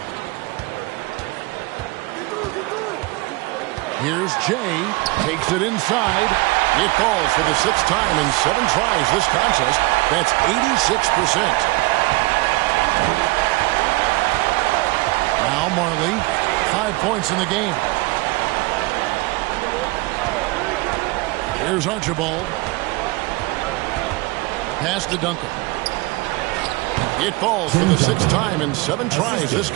Here's Jay. Takes it inside. It falls for the 6th time in 7 tries this contest. That's 86%. Now Marley. 5 points in the game. Here's Archibald. Pass to Duncan. It falls for the 6th time in 7 tries this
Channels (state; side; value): quieter; left; 22.8 dB